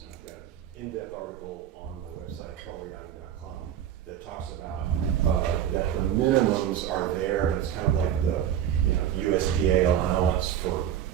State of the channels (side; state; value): left; quieter; 10.2 dB